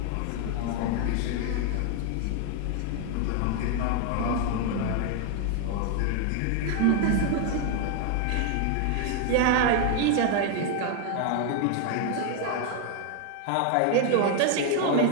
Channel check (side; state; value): both; different; correlation 0.00